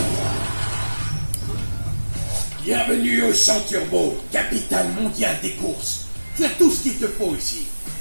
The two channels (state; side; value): inverted; both; correlation -1.00